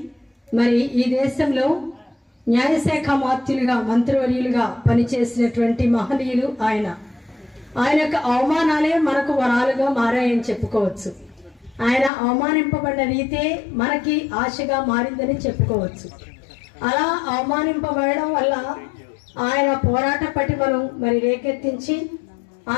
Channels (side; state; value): right; drops out; at 12.1 s